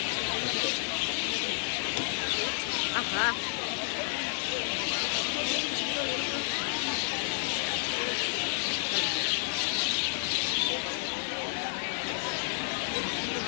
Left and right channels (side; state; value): right; silent; 57 dB below the other